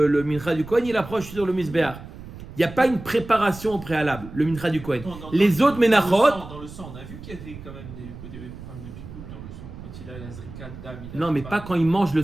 mincha du Kohen, il approche sur le misbéach. Il n'y a pas une préparation au préalable, le mincha du Kohen. Les autres menachot, Dans le sang, on a vu qu'il y avait quand même des problèmes de pigoule dans le sang. Quand il a la zrika d'âme, non, mais pas quand il mange le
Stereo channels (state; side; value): noise; right; rumble, 14 dB below the sound